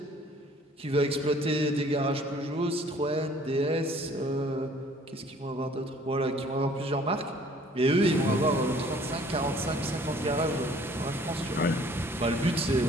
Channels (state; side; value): normal; both; correlation 0.55